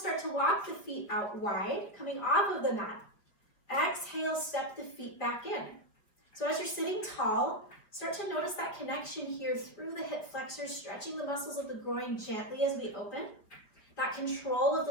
to walk the feet out wide, coming off of the mat. Exhale, step the feet back in. So as you're sitting tall, start to notice that connection here through the hip flexors, stretching the muscles of the groin gently as we open. That control of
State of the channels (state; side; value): late; right; 4.7 ms